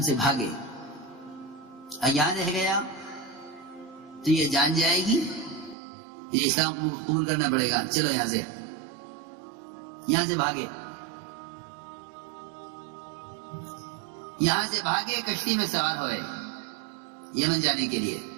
سے بھاگے۔ یہاں رہ گیا تو یہ جان جائے گی، یہ اسلام قبول کرنا پڑے گا، چلو یہاں سے بھاگے۔ یہاں سے بھاگے، کشتی میں سوار ہوئے یمن جانے کے لیے۔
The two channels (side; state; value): left; drops out; at 5.8 s